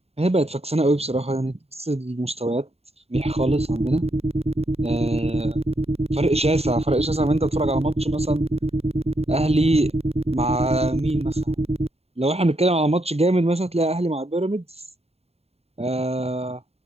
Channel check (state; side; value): late; left; 0.30 ms